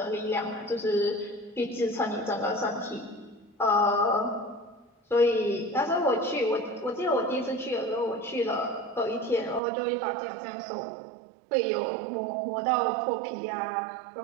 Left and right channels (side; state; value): left; drops out; at 9.6 s